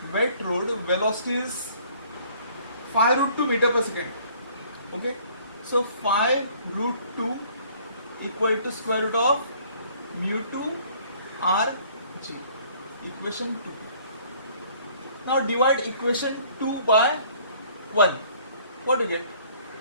velocity is 5 root 2 meter per second. Okay, so 5 root 2 equal to square root of mu 2 r g. Equation 2. Now divide equation 2 by 1. What do you get?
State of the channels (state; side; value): inverted; both; correlation -0.56